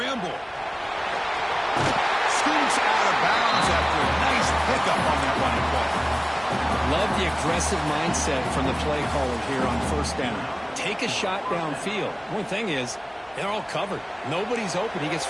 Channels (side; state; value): both; identical; correlation 1.00